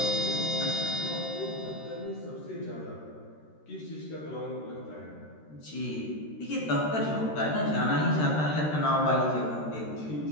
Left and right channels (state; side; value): late; right; 13 ms